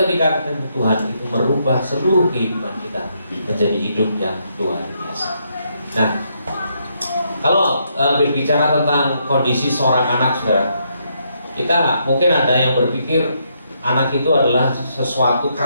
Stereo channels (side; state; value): both; inverted; correlation -0.76